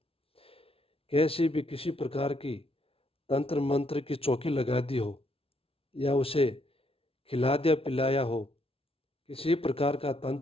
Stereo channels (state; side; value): late; right; 0.27 ms